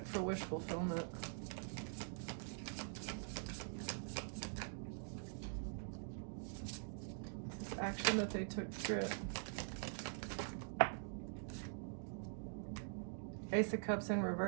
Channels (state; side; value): silent; left; digital silence